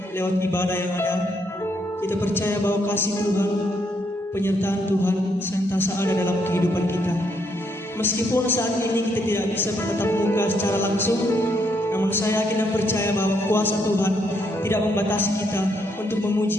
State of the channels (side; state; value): both; normal; correlation 0.74